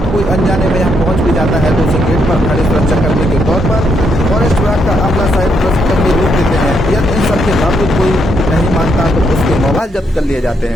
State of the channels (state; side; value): normal; both; correlation 0.77